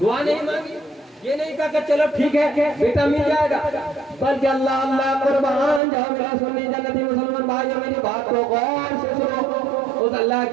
نہیں مانگی، یہ نہیں کہا کہ چلو ٹھیک ہے بیٹا مل جائے گا، بلکہ اللہ اللہ قربان جاؤ میرا سنی جنتی مسلمان بھائیو میری بات کو غور سے سنو. اس اللہ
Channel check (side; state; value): left; drops out; at 5.8 s